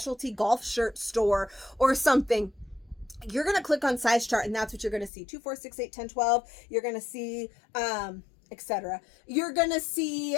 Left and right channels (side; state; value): right; drops out; at 5.1 s